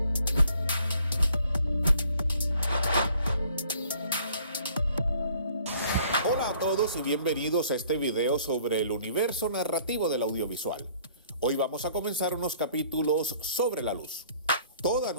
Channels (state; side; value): inverted; both; correlation -0.58